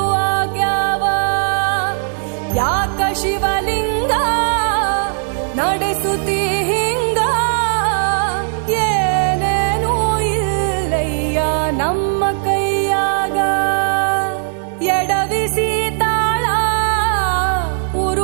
ಆಗ್ಯಾವ. ಯಾಕ ಶಿವಲಿಂಗ ನಡೆಸುತ್ತಿ ಹಿಂಗ, ಏನೇನೂ ಇಲ್ಲಯ್ಯ ನಮ್ಮ ಕೈಯಾಗ. ಎಡವಿಸಿ ತಾಳ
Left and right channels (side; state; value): left; silent; 68 dB below the other